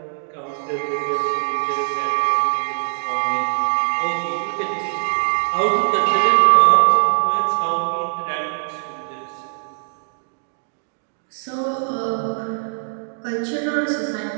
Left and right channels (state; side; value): silent; left; digital silence